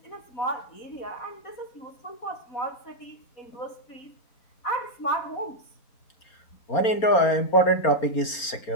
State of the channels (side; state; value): right; late; 4.3 ms